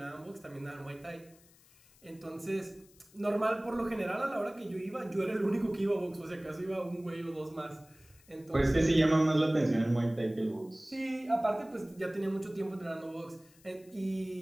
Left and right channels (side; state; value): left; noise; hiss, 27 dB below the sound